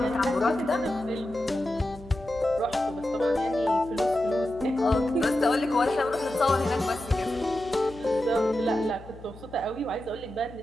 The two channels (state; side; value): noise; left; hum, 18 dB below the sound